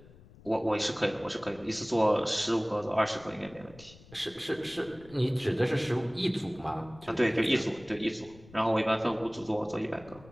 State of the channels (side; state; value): left; noise; rumble, 22 dB below the sound